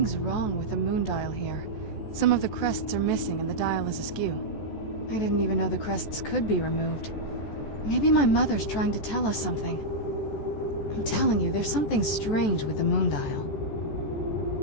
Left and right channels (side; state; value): right; late; 14 ms